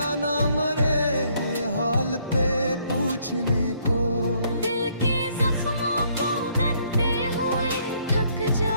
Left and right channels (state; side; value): inverted; both; correlation -0.67